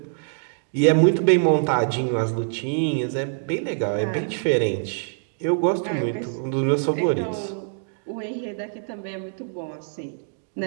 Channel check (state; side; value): silent; left; digital silence